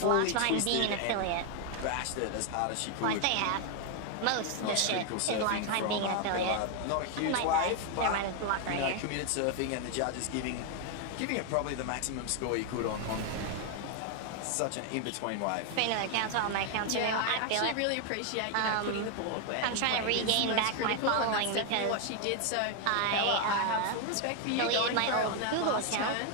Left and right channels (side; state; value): both; different; correlation 0.00